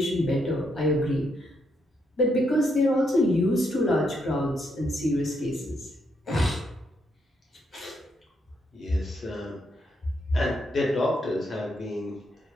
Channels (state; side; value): normal; both; correlation 0.77